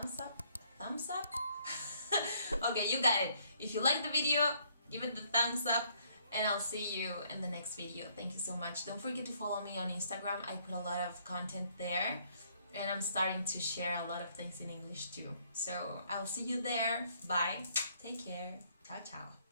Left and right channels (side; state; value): both; inverted; correlation -0.66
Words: up? Thumbs up? Okay, you got it. If you like the video, give it the thumbs up, and I'll see you in the next video. Thank you so much. Don't forget to follow me on Instagram. I put a lot of content there, and I'm starting to share a lot of things in English too. So I'll see you there. Bye. Take care. Ciao, ciao.